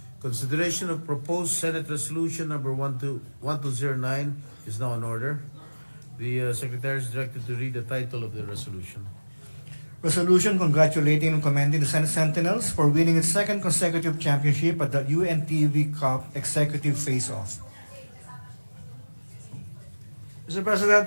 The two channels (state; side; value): inverted; both; correlation -1.00